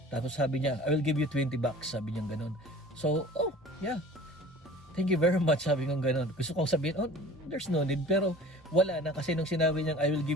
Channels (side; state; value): both; normal; correlation 0.44